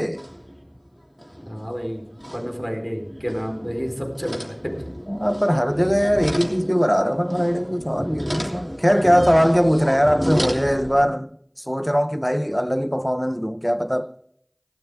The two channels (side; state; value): both; identical; correlation 1.00